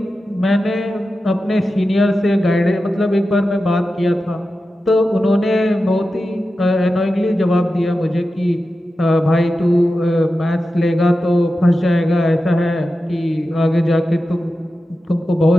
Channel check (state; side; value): normal; both; correlation 0.92